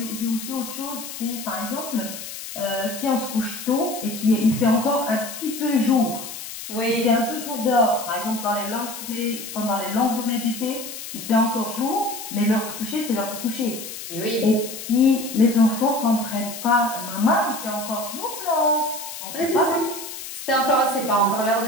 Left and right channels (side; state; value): left; noise; hiss, 10 dB below the sound